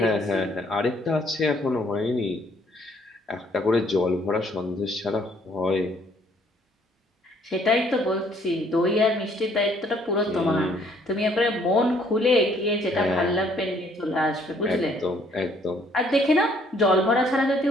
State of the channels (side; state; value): both; normal; correlation 0.64